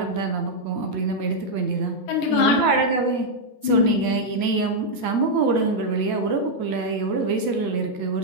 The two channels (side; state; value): right; late; 14 ms